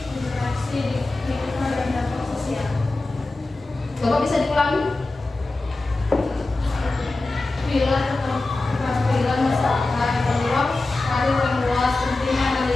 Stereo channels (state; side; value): quieter; right; 3.1 dB